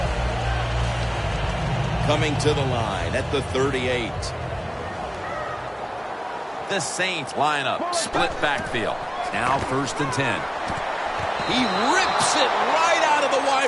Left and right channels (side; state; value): both; identical; correlation 1.00